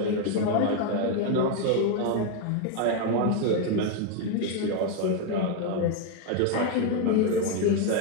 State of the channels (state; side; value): different; both; correlation 0.01